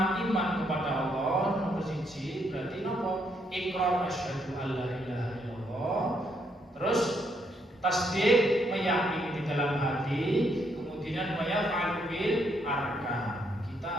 kepada Allah, nomor 1 berarti nopo? Iqrar asyhadu alla ilaha illallah. Terus tasdik meyakini di dalam hati, kemudian wa yaf'alu bil arkan.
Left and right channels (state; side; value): normal; both; correlation 0.74